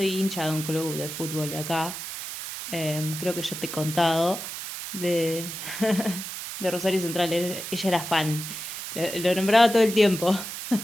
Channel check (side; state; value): right; noise; hiss, 8 dB below the sound